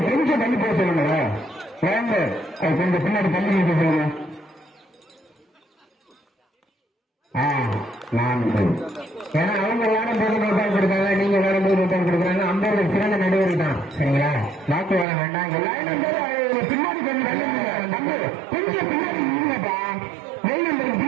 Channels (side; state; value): left; drops out; at 15.1 s